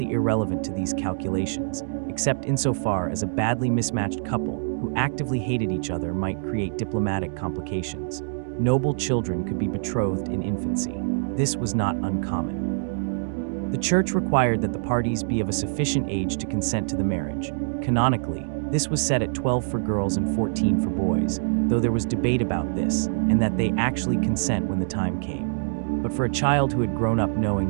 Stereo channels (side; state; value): left; silent; digital silence